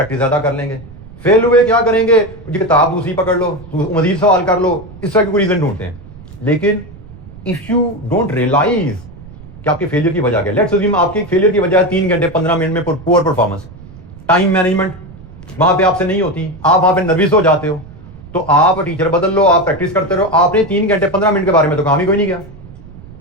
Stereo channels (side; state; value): right; noise; rumble, 18 dB below the sound